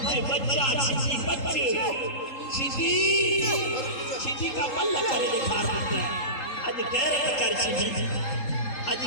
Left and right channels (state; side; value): late; right; 3.8 ms